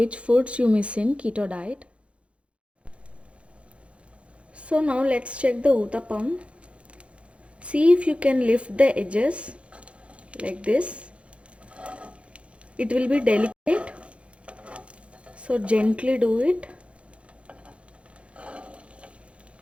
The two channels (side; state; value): left; late; 0.061 ms